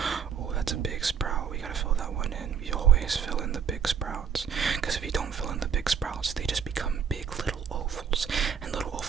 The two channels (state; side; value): quieter; left; 7.3 dB